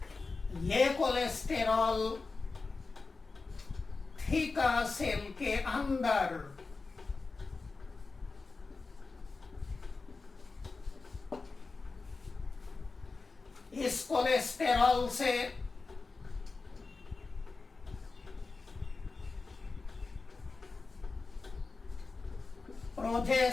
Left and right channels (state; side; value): quieter; right; 4.0 dB